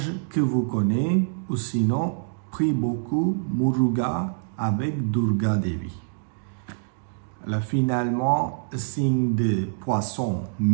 que vous connaissez, ou sinon, prie beaucoup Muruga avec Durga Devi. Là, finalement, signe de poisson,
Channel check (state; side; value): silent; left; digital silence